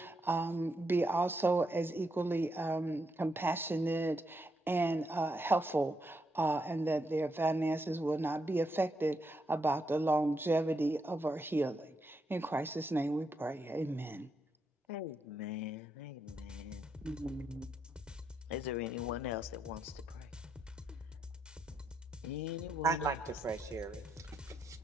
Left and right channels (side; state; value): both; normal; correlation 0.81